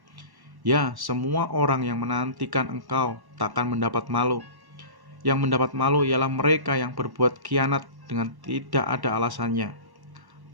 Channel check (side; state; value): left; late; 1.1 ms